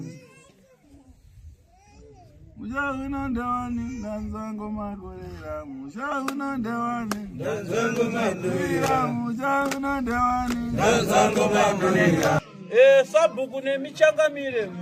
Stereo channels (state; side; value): identical; both; correlation 1.00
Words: Musha uno ndewani ndanzango makorera. Musha uno ndewani ndanzango makorera. Musha uno ndewani ndanzango makorera. Sabhuku nemichangamire